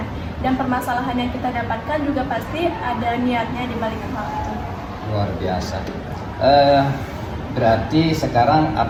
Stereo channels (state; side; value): identical; both; correlation 1.00